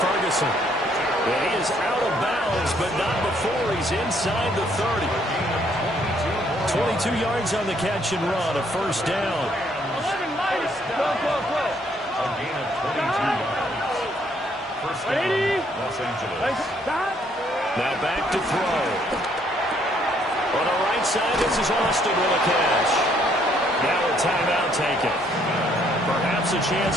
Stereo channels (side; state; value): both; normal; correlation 0.67